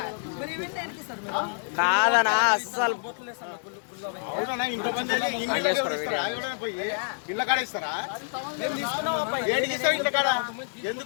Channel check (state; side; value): silent; right; 60 dB below the other